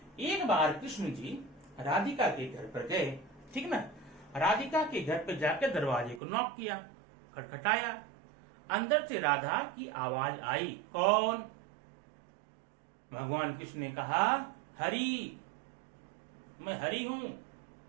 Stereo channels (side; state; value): left; drops out; at 6.2 s